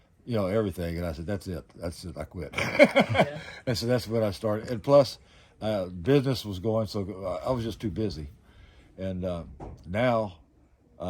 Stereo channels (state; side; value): identical; both; correlation 1.00